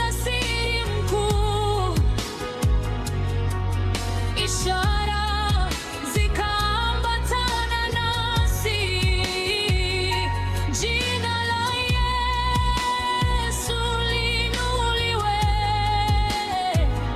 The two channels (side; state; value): both; identical; correlation 1.00